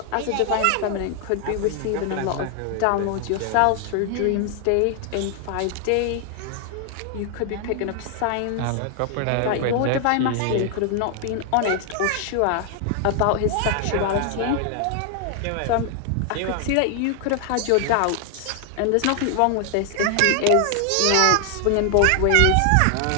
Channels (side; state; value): both; different; correlation 0.00